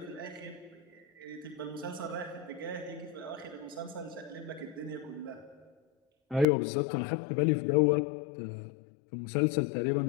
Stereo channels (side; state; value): right; drops out; at 6.5 s